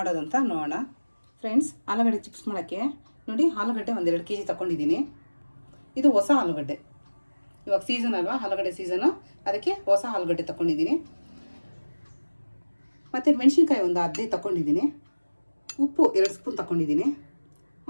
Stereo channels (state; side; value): inverted; both; correlation -1.00